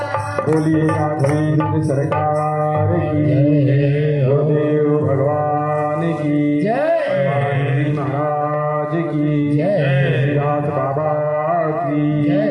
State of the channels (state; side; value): identical; both; correlation 1.00